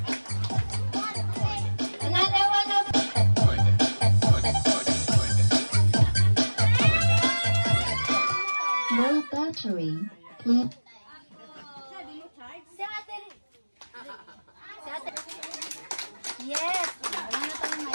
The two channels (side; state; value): both; inverted; correlation -1.00